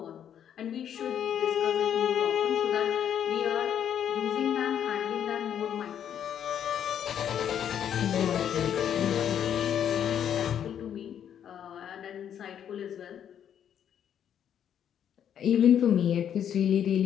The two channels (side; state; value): right; quieter; 9.3 dB